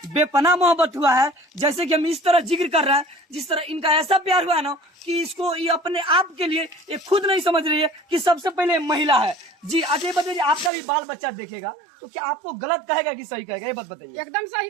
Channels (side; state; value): left; drops out; at 10.7 s